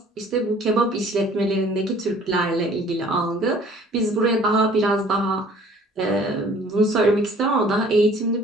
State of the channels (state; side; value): normal; both; correlation 0.53